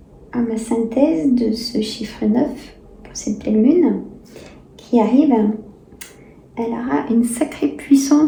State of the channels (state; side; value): identical; both; correlation 1.00